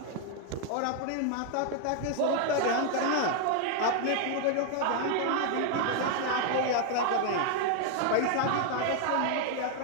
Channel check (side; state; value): both; different; correlation 0.00